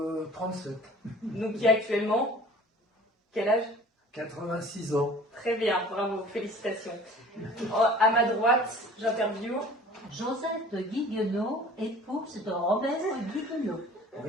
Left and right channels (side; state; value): both; normal; correlation 0.46